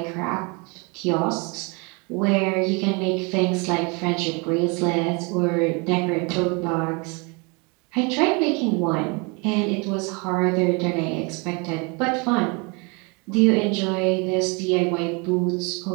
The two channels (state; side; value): quieter; left; 30.7 dB